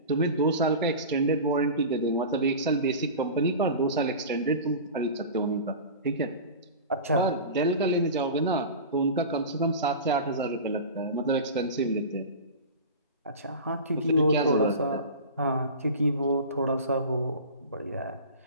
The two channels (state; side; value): inverted; both; correlation -0.32